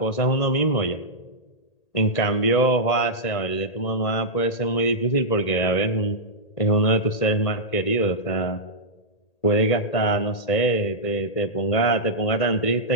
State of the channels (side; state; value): right; late; 1.8 ms